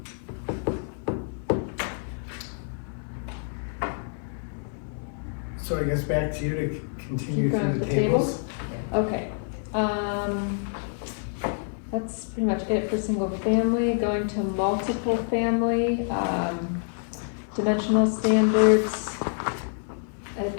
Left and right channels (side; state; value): right; silent; 60 dB below the other